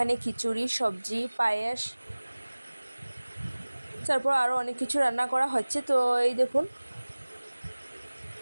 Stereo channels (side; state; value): both; inverted; correlation -1.00